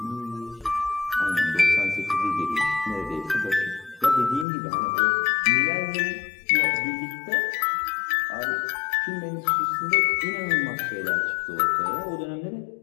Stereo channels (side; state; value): right; drops out; at 4.5 s